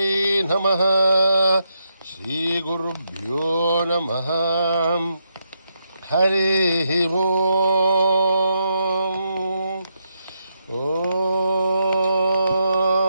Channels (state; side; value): inverted; both; correlation -0.81